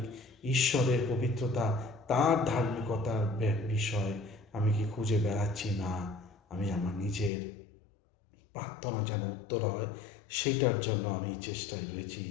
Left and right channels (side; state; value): right; drops out; at 7.3 s